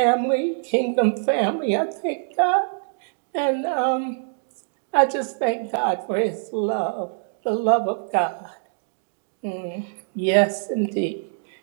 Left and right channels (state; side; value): silent; left; digital silence